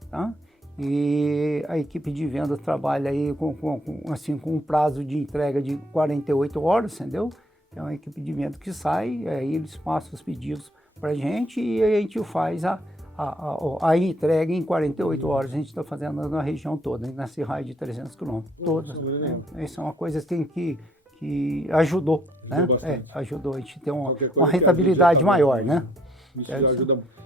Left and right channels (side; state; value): both; normal; correlation 0.65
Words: tá? E a equipe de venda trabalha aí com um prazo de entrega de 48 horas, entendeu? É uma equipe de venda que sai, aí eles passam os pedidos para a gente e a gente faz a entrega em 48 horas. A gente está fazendo na região toda, nesse raio de 300 quilômetros. Todas. Essa é uma coisa assim, que ajudou, né? Ajudou a gente ter uma rentabilidade maior, né? Isso já ajuda muito.